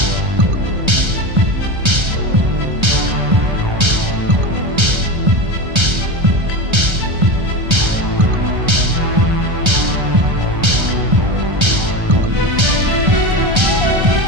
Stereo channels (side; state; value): left; late; 1.3 ms